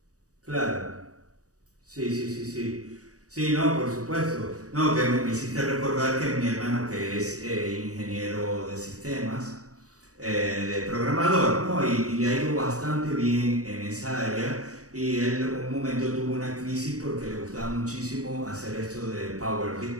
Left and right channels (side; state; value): left; late; 0.66 ms